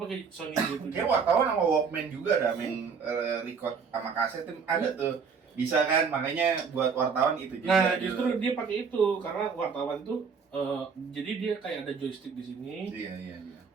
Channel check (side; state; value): left; quieter; 5.7 dB